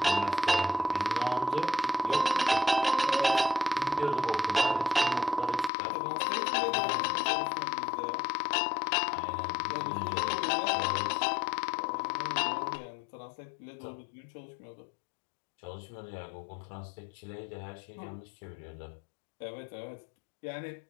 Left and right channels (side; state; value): right; drops out; at 5.7 s